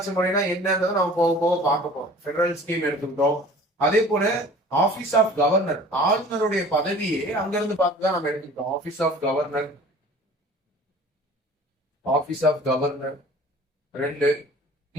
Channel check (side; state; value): both; normal; correlation 0.46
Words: முறைனா என்னன்றதை நம்ம போக போக பார்க்க போறோம். பெடரல் ஸ்கீம் எடுத்துக்கிட்டோம். அதே போல ஆபீஸ் ஆஃப் கவர்னர், ஆளுநருடைய பதவியே அங்க இருந்து பார்த்துதான் நம்ம எடுத்துக்கிட்டோம். Office of governor, office of governor 2.